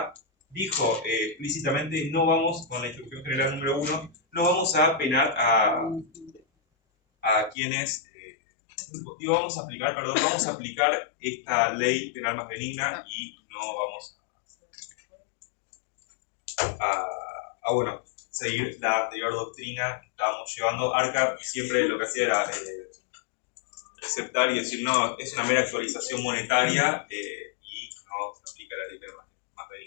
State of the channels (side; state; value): right; drops out; at 7.6 s